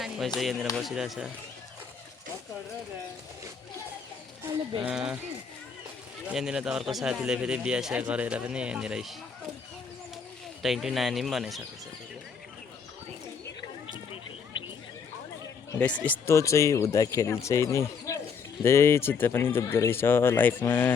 कोही चाहिँ यहाँनिर बसिरहेछ यहाँनिर त अर्को साथीले फेरि बिहा गरेर पनि यहाँनिर टाइटु नानी पनि बनाइसकेको छ गाइस यस्तो चाहिँ हुँदाखेरि चाहिँ नि धेरै चित्त पनि दुख्दो रहेछ लाइफमा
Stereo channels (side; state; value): right; quieter; 6.0 dB